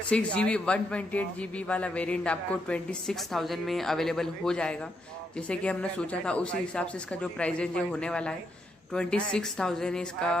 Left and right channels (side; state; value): both; normal; correlation 0.79